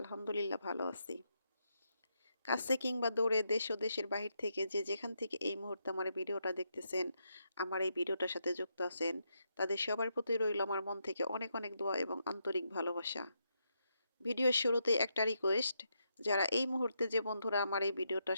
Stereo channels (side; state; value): both; inverted; correlation -0.81